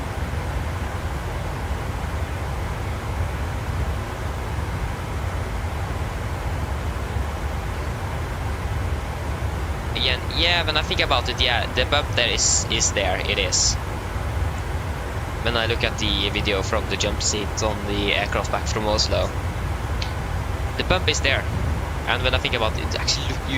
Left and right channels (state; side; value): identical; both; correlation 1.00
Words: Again, yeah, when I think about it, yeah, the bump there is there, it is. When I look at the video from the jump seat on the aircraft back from Oslo, the bump is there. And when I think about it, actually,